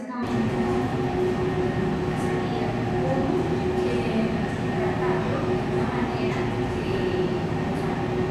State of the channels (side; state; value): both; identical; correlation 1.00